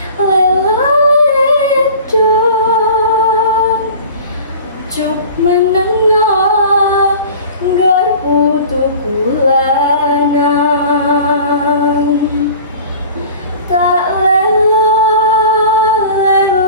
lela edong juk menengah garpu tukulanang tak lela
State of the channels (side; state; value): both; inverted; correlation -0.41